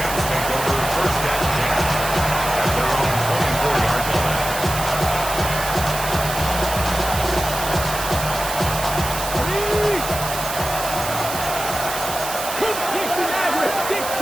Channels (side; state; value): right; noise; hiss, 6 dB below the sound